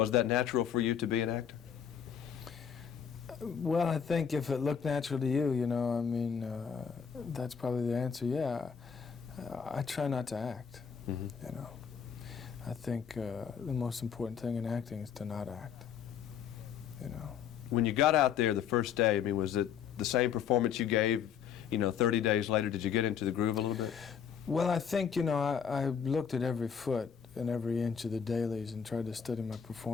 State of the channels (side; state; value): right; quieter; 7.6 dB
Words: that natural for you to be an actor? Well, I think if it looked natural to you, you know, I mean, that's probably the answer, yeah. I try not to act, you know. I think the most important thing in acting is to not act, you know. When you got out there the first day, I mean, was it the same performance you gave, 30 days later? Did you get into the groove a little bit? Well, I think, you know, I looked at every foot and every inch of the dailies and tried to study my